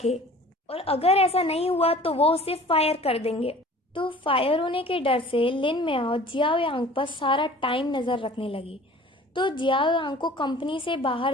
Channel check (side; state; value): both; normal; correlation 0.46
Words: और अगर ऐसा नहीं हुआ तो वो उसे फायर कर देंगे। तो फायर होने के डर से लिन मियाओ जियाओ यांग पर सारा टाइम नजर रखने लगी। तो जियाओ यांग को कंपनी से बाहर